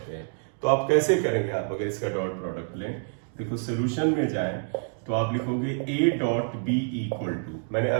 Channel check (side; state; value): left; silent; digital silence